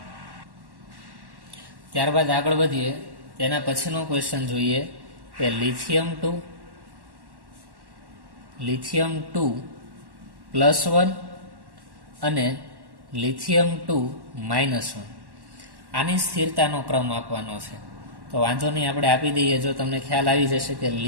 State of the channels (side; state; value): left; late; 1.1 ms